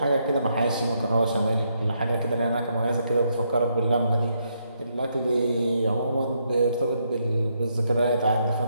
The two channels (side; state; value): both; inverted; correlation -0.77